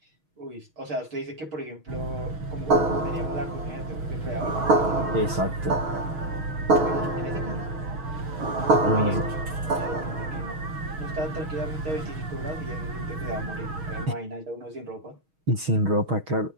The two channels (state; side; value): late; left; 6.3 ms